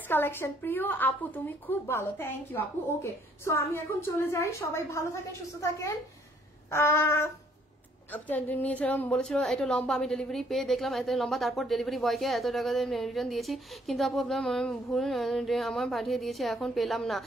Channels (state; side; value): normal; both; correlation 0.64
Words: কালেকশন প্রিয় আপু, তুমি খুব ভালো, থ্যাংক ইউ আপু। ওকে সো আমি এখন চলে যাই, সবাই ভালো থাকেন সুস্থ থাকেন। নিয়েছিলাম বলেছিল এটা লম্বা, আমি ডেলিভারি পেয়ে দেখলাম এত লম্বা, তারপর ডেলিভারি বয়কে এত টাকা রিটার্ন দিয়েছি, কিন্তু আপু আপনার ভুল আমার পাঠিয়ে দিয়েছে, এখন পেলাম না।